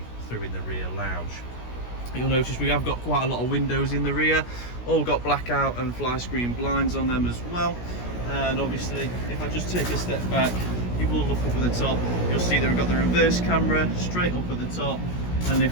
through in the rear lounge. You'll notice we have got quite a lot of windows in the rear, all got blackout and fly screen blinds on them as well. And obviously if I just take a step back, you will look up at the top, you'll see that we've got the reverse camera straight up at the top, and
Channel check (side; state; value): right; late; 17 ms